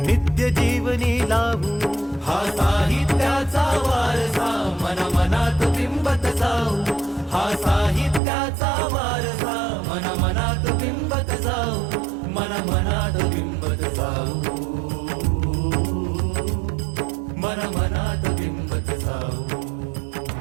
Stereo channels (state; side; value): drops out; left; at 8.2 s